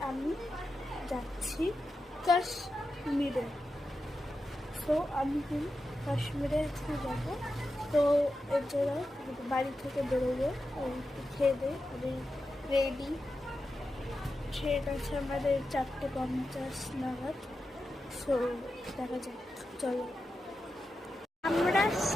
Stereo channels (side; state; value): both; normal; correlation 0.90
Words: আমি যাচ্ছি কাশ্মীরে। সো আমি কাশ্মীরে একটু যাবো, তো এর জন্য বাড়ি থেকে বেরোবো। খেয়ে দিয়ে আমি রেডি। ট্রেন আছে আমাদের 4:50 নাগাদ। সো দেখা যাক, চলো। আমরা